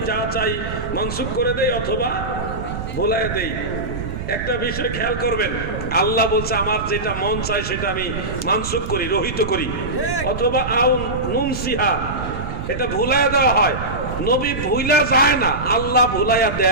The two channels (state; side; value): noise; right; rumble, 7 dB below the sound